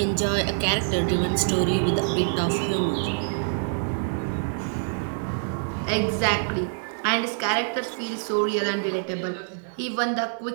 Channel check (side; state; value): left; silent; 57 dB below the other